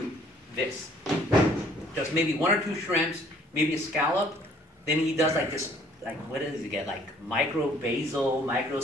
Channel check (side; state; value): both; normal; correlation 0.59